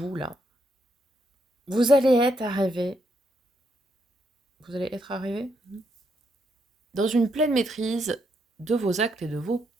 là, vous allez être arrivé. Vous allez être arrivé dans une pleine maîtrise de vos actes et de vos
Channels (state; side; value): normal; both; correlation 0.78